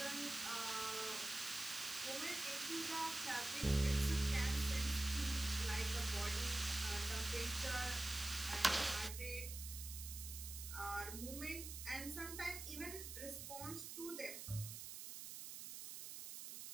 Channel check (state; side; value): noise; right; hiss, 8 dB below the sound